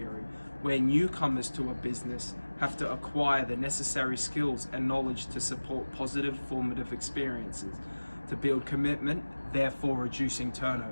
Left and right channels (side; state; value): both; inverted; correlation -1.00